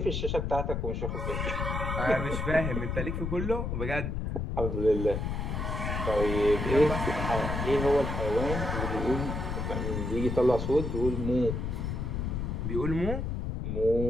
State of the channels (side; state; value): left; noise; rumble, 2 dB below the sound